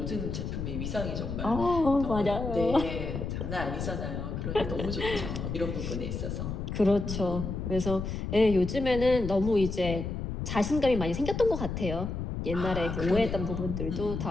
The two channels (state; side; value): noise; left; rumble, 4 dB below the sound